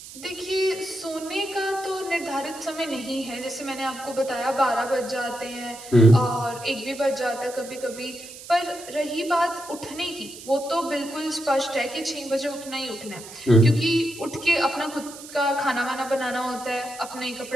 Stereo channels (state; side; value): noise; right; hiss, 15 dB below the sound